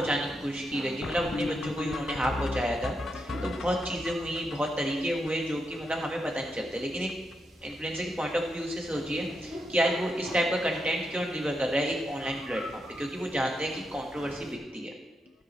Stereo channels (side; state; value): both; normal; correlation 0.83